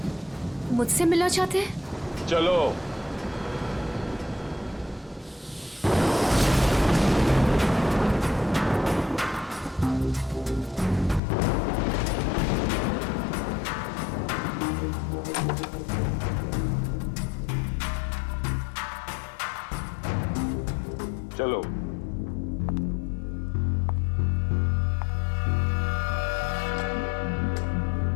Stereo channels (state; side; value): drops out; right; at 11.2 s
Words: मुझसे मिलना चाहते हैं? चलो। चलो।